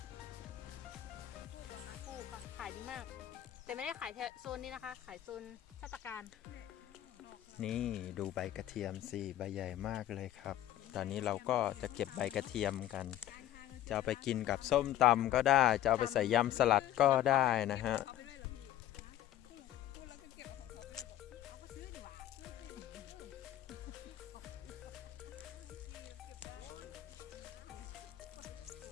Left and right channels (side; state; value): right; quieter; 12.6 dB